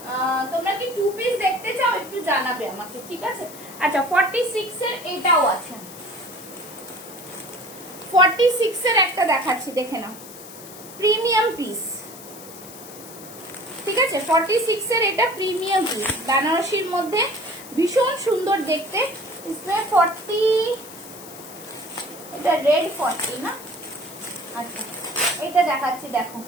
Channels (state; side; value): noise; left; hiss, 16 dB below the sound